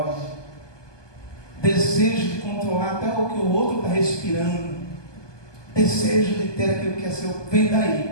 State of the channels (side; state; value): right; late; 1.2 ms